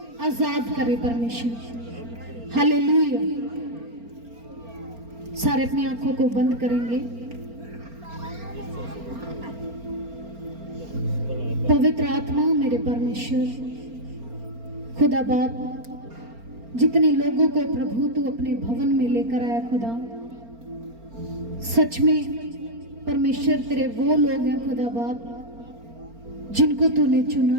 आजाद करे परमेश्वर। हालेलुया। सारे अपनी आंखों को बंद करेंगे। पवित्र आत्मा मेरे परमेश्वर, खुदा बाप, जितने लोगों को प्रभु तू अपने भवन में लेकर आया खुदा, सच में परमेश्वर तेरे वो लोग हैं खुदा बाप जिनको तूने चुना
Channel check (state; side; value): late; left; 4.3 ms